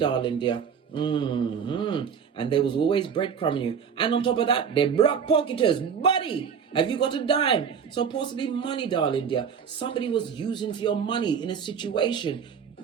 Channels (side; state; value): left; quieter; 7.0 dB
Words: dear. And there was always breadcrumbing you, and on top of that, they're block pocketers. Buddy, have you got a dime? So possibly money, darling dear. Somebody was using for your money in a situation.